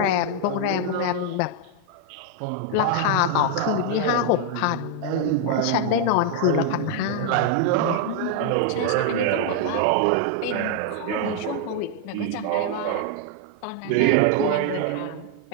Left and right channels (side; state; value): both; different; correlation 0.00